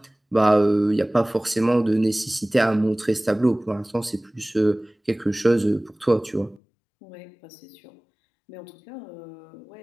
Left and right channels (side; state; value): right; drops out; at 6.6 s